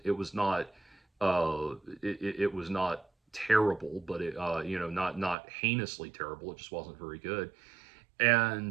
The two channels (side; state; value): left; drops out; at 5.4 s